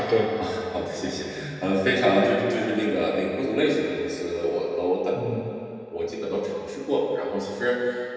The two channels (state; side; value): identical; both; correlation 1.00